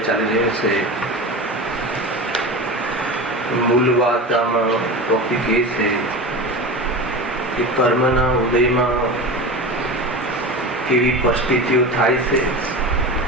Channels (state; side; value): normal; both; correlation 0.28